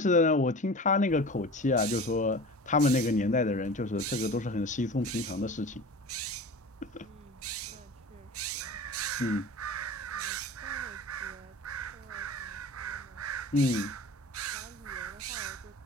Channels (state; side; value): normal; both; correlation 0.36